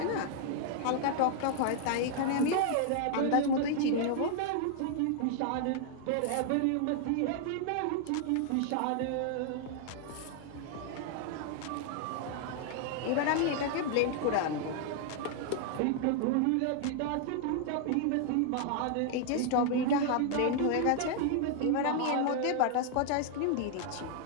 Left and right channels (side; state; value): both; different; correlation 0.00